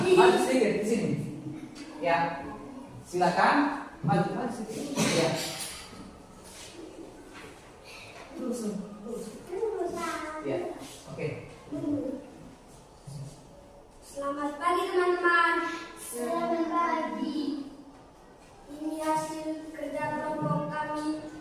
sedikit di sini. Ya, silakan maju sedikit. Ya. Terus. Ya, oke. Selamat pagi teman-teman. Selamat pagi. Ini hasil kerja kelompok kami.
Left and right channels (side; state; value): both; identical; correlation 1.00